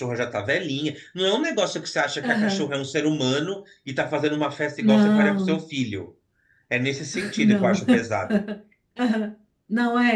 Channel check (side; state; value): both; identical; correlation 1.00